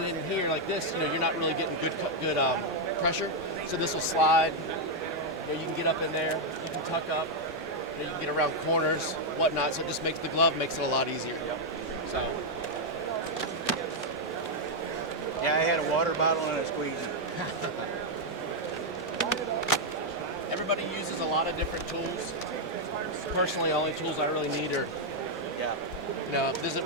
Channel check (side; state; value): both; normal; correlation -0.01